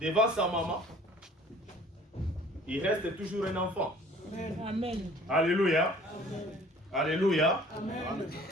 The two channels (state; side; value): normal; both; correlation 0.52